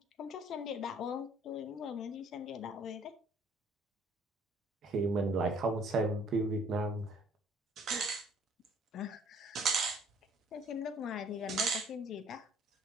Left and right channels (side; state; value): both; normal; correlation 0.58